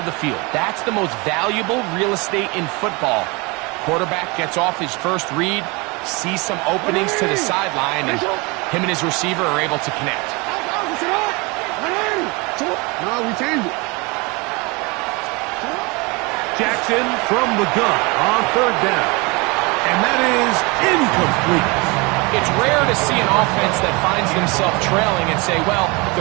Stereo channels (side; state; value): left; quieter; 27.1 dB